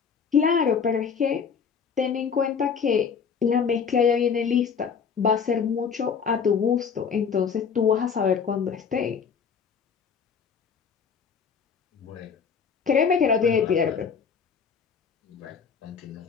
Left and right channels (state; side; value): quieter; right; 6.4 dB